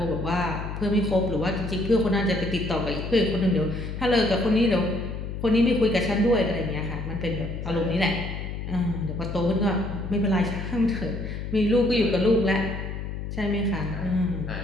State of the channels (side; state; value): left; noise; hum, 6 dB below the sound